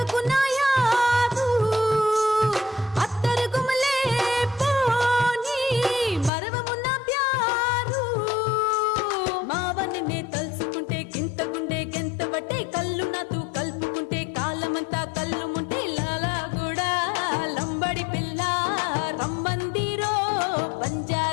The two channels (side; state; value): right; drops out; at 6.3 s